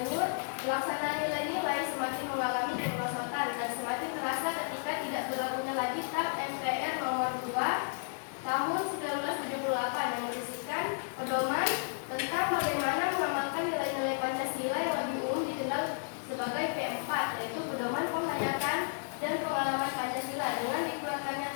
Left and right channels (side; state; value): right; silent; digital silence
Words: Pelaksanaan nilai-nilai semakin mengalami kemerosotan dan semakin terasa ketika tidak berlakunya lagi TAP MPR nomor 2 tahun 1978 yang berisikan pedoman tentang bagaimana mengamalkan nilai-nilai Pancasila yang lebih umum dikenal sebagai P4, yaitu pedoman penghayatan dan pengalaman Pancasila dengan dikeluarkannya